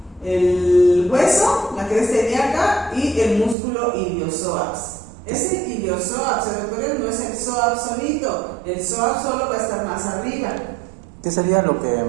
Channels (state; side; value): drops out; left; at 3.6 s